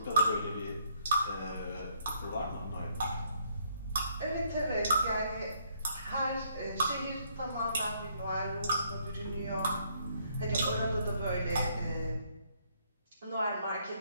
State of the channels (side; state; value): both; inverted; correlation -0.69